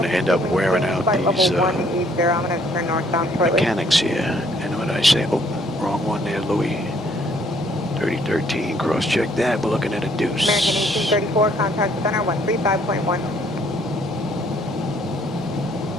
to end up wearing out these I'm going to turn northbound shortly. mechanics here. And what did I say? Oh, wrong one there, Louis. 3013, cross-check that. We're looking at a deuce. American 1834, contact center 135.1.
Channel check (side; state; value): both; normal; correlation 0.64